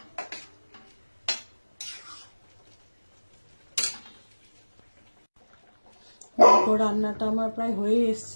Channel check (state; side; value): inverted; both; correlation -1.00